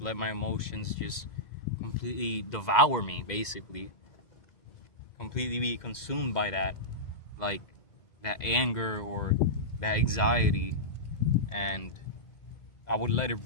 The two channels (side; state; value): right; late; 2.1 ms